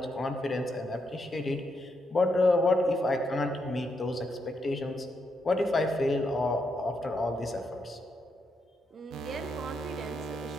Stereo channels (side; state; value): both; normal; correlation 0.80